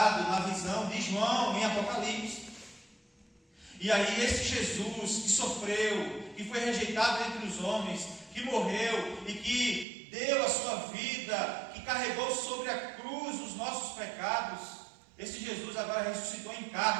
na visão de João em Apocalipse. E aí esse Jesus que sofreu, que foi rejeitado entre os homens, que morreu e que deu a sua vida, que carregou sobre a cruz os nossos pecados, esse Jesus agora ressuscitou em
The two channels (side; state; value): left; drops out; at 9.9 s